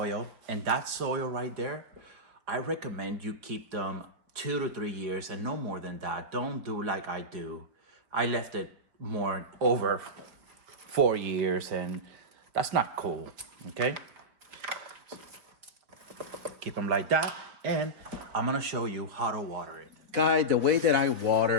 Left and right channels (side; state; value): left; late; 4.4 ms